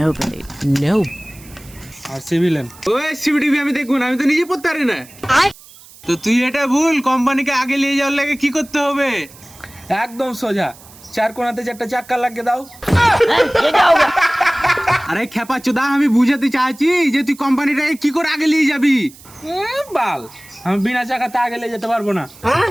No. আর সিভিলেন ওই CBTV আমি দেখুন, আমি তো নিজে পড়তে পারি না। তো তুই এটা ভুল, কোম্পানিকে আগে নিয়ে যাওয়ার লাগে কি করতে হবে? একদম সোজা, চার কোণাতে চারটা চাক্কা লাগিয়ে দাও। আরে খেপা চোদা, আমি বুঝাতে চাইছি যে তুই কোম্পানিটাকে কি করে আগে নিয়ে যাবি। বাল, আমি বিনা চাকাতে আগে নিয়ে যেতে পারবো না।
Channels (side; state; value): right; noise; hiss, 22 dB below the sound